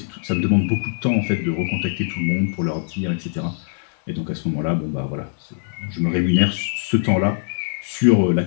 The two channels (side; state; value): right; silent; digital silence